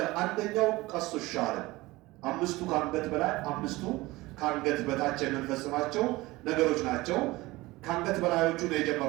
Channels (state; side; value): quieter; left; 20.2 dB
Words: አንደኛው ቀሱ ሻር አምስቱ ካንገት በላይ አምስቱ ካንገት በታች የምንፈጽማቸው ነገሮች ናቸው። ካንገት በላዮቹ ነው